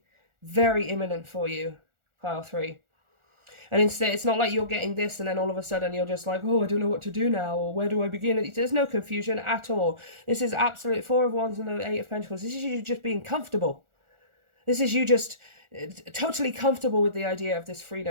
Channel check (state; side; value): late; left; 1.4 ms